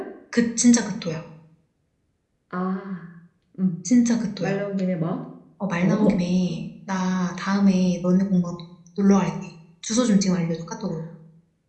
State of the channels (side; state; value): both; identical; correlation 1.00